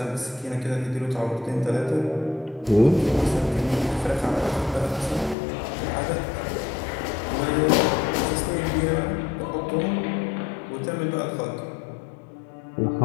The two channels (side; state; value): right; drops out; at 5.4 s